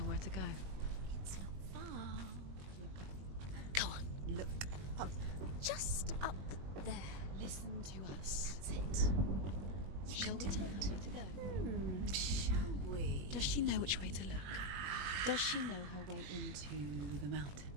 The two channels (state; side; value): late; left; 21 ms